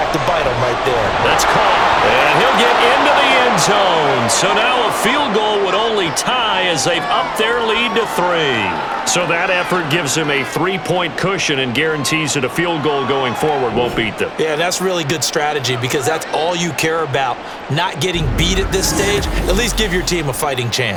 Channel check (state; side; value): identical; both; correlation 1.00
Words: to bite them right there. That's caught, and he'll get into the end zone. So now a field goal would only tie as they've upped their lead to 3. So that effort gives them a 3-point cushion and guarantees that a field goal going forward won't beat them. Yeah, that's really good strategy because that's all you care about. Not getting beat at this stage. At least give your team a fighting